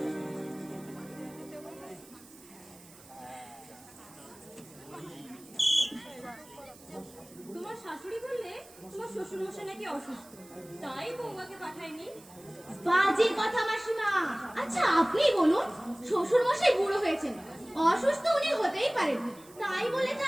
তোমার শাশুড়ি বললে তোমার শ্বশুর মশাই নাকি অসুস্থ, তাই বৌমাকে পাঠায়নি। বাজে কথা মাসিমা। আচ্ছা আপনি বলুন, শ্বশুর মশাই বুড়ো হয়েছেন, অসুস্থ উনি হতেই পারেন, তাই বলে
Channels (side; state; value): right; noise; hiss, 22 dB below the sound